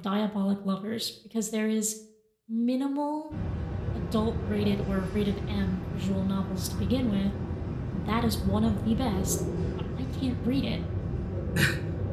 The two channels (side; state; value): both; identical; correlation 1.00